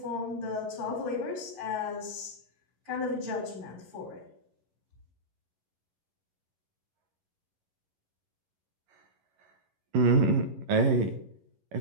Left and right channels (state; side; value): late; left; 11 ms